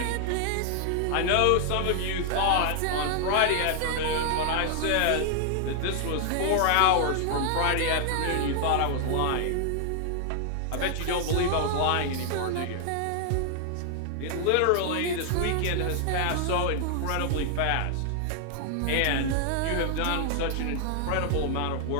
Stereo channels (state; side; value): different; both; correlation 0.00